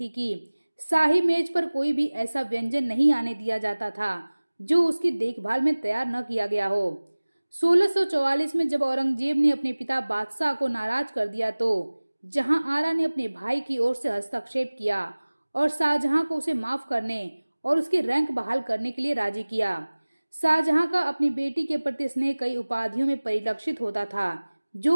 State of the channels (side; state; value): both; inverted; correlation -1.00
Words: कि शाही मेज पर कोई भी ऐसा व्यंजन नहीं आने दिया जाता था जो उसकी देखभाल में तैयार न किया गया हो। 1644 में जब औरंगजेब ने अपने पिता बादशाह को नाराज कर दिया तो जहांआरा ने अपने भाई की ओर से हस्तक्षेप किया और शाहजहां को उसे माफ करने और उसके रैंक बहाल करने के लिए राजी किया। शाहजहां का अपनी बेटी के प्रति स्नेह कई उपाधियों में परिलक्षित होता था